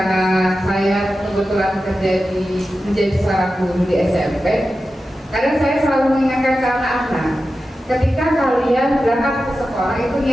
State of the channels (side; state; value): both; normal; correlation 0.92